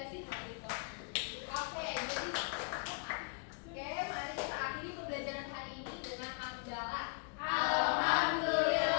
hal itu. Oke, jadi mari kita akhiri pembelajaran hari ini dengan hamdalah.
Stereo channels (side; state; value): right; quieter; 37.7 dB